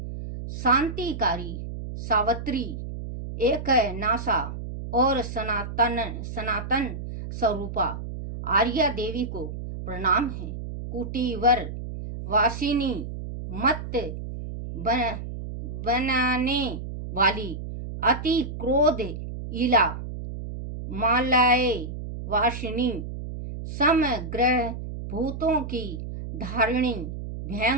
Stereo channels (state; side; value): noise; right; hum, 8 dB below the sound